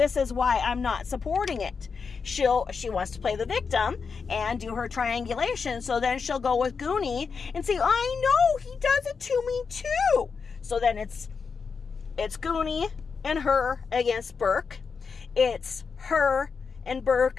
is why I'm not supporting it. She wants to play the victim and do her triangulation, so then she'll go with Goonie and say, I know, he does it to me too. So then it's Goonie and her against Burke. It's her and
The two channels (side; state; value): right; quieter; 5.4 dB